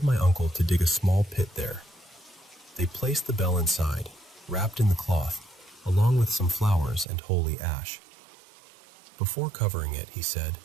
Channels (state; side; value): drops out; left; at 7.1 s